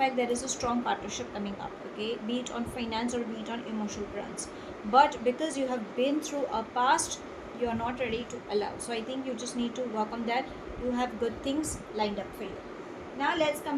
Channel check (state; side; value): identical; both; correlation 1.00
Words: there is a strong partnership coming up, okay? Be it on finance or be it on emotional grounds. But because you have been through a past, you are not ready to allow. So I think you just need to work on that. You have good things lined up for you. Now let's